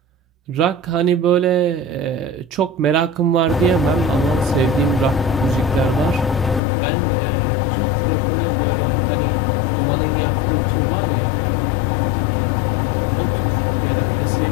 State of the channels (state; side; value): drops out; right; at 6.6 s